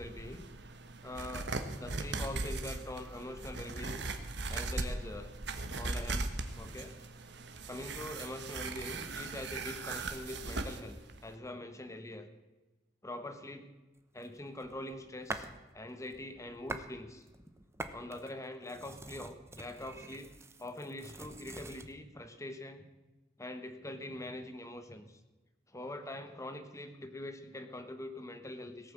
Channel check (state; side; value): normal; both; correlation 0.59